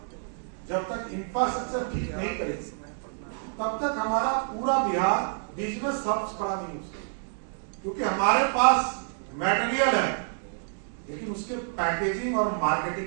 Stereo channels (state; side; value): silent; left; digital silence